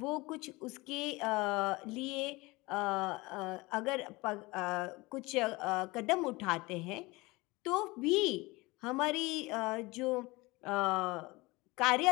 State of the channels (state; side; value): quieter; right; 22.8 dB